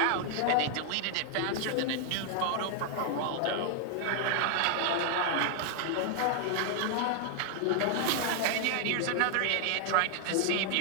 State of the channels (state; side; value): different; both; correlation 0.00